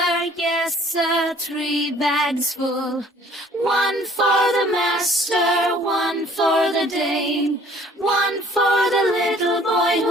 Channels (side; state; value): both; normal; correlation 0.56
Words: 3 bags full. One for the master, one for the dame, one for the little boy